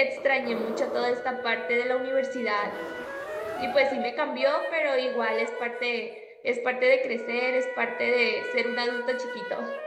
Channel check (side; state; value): both; identical; correlation 1.00